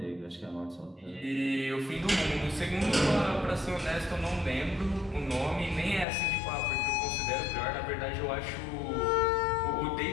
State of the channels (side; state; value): right; drops out; at 6.1 s